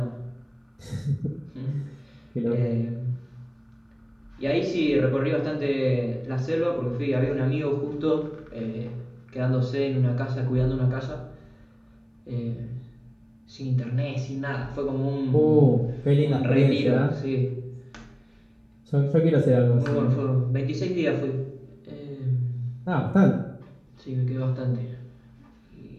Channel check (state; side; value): identical; both; correlation 1.00